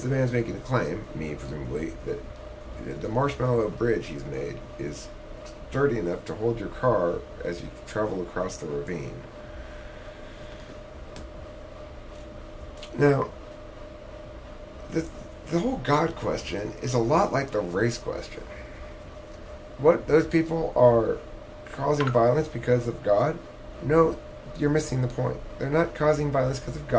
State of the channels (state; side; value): identical; both; correlation 1.00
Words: man's making a claim, me presumably, that the marshmallow bridge he's made is sturdy enough to hold your car as you travel across the ravine. Now, the whole God question is a lot like the race question. What, those people are causing violence because of God? No, you're missing the point. They're not causing violence because of